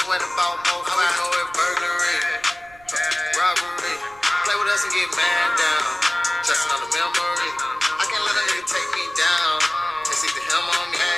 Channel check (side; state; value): right; noise; rumble, 27 dB below the sound